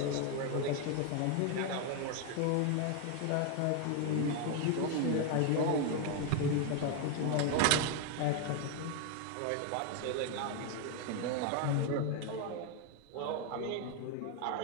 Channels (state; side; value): different; both; correlation 0.01